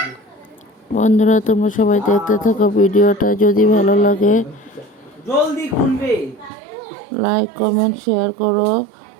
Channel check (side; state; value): left; drops out; at 6.5 s